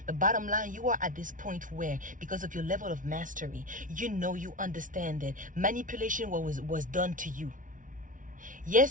But bottom line, you are at this point where, because of your level of mastery, you understand that manipulation was done to you.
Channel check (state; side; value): late; left; 0.38 ms